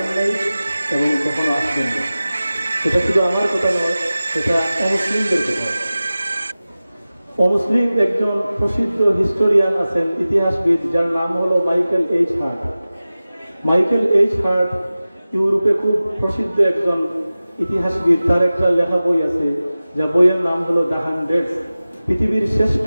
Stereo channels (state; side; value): inverted; both; correlation -0.96